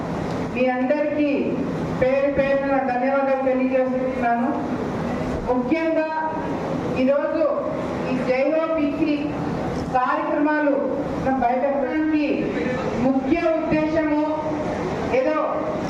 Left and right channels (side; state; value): both; identical; correlation 1.00